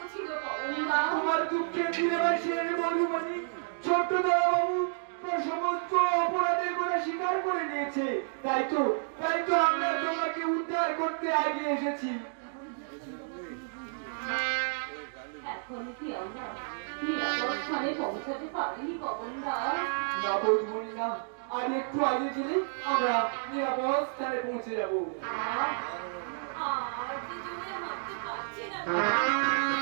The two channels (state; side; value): silent; left; digital silence